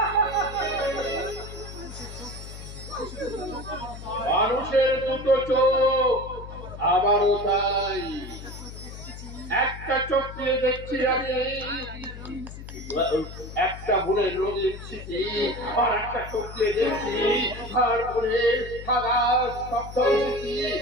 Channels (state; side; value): noise; left; hum, 12 dB below the sound